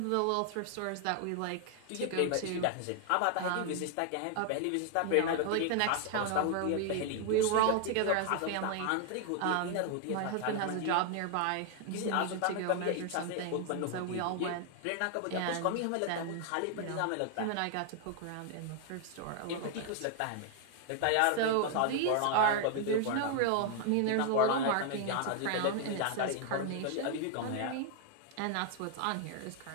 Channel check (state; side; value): different; both; correlation 0.00